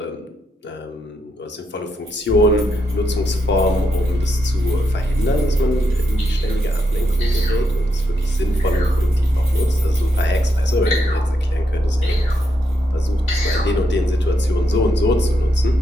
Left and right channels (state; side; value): normal; both; correlation 0.81